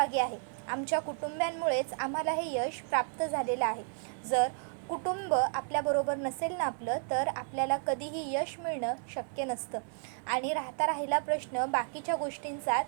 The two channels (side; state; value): left; silent; 56 dB below the other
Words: आहे। आमच्या कुटुंबांमुळेच आम्हाला हे यश प्राप्त झालेलं आहे। जर कुटुंब आपल्याबरोबर नसेल ना आपलं, तर आपल्याला कधीही यश मिळणं शक्य नसतं। आणि राहिला प्रश्न बाकीच्या गोष्टींचा,